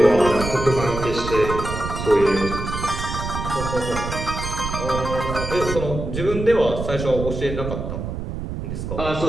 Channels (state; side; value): noise; right; rumble, 5 dB below the sound